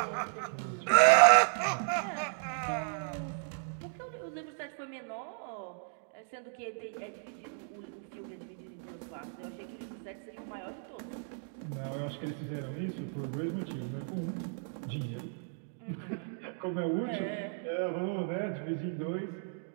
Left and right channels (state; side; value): silent; left; digital silence